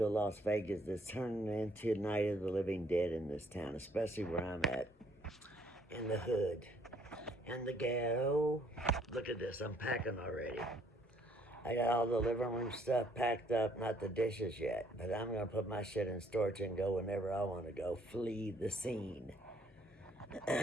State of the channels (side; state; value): both; normal; correlation 0.65